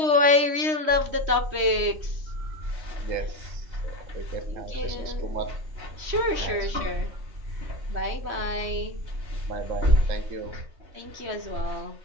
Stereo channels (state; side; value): late; left; 3.1 ms